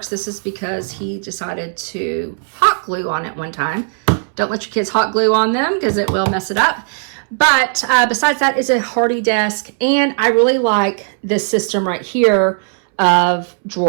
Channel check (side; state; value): left; silent; 68 dB below the other